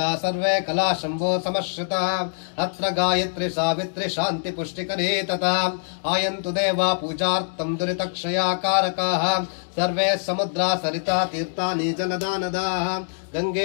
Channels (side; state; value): right; silent; digital silence